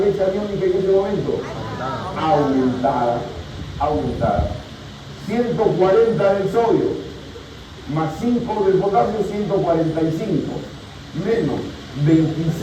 aniónica en ese momento? Aumentada. 140 del sodio, más 5 del potasio, 145, menos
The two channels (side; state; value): both; identical; correlation 1.00